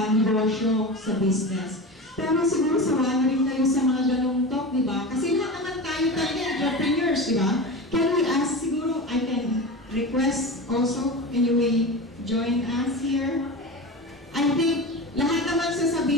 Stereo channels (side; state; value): both; normal; correlation 0.28